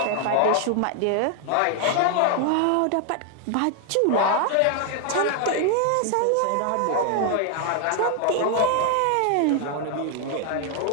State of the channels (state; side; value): different; both; correlation 0.00